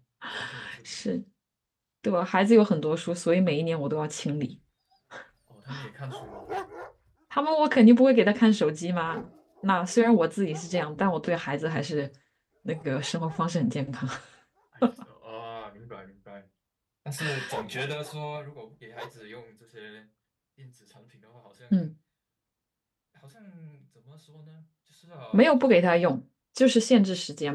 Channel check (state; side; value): identical; both; correlation 1.00